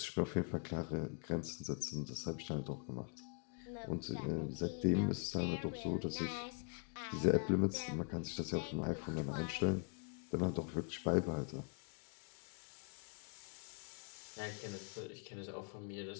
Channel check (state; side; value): quieter; right; 37.3 dB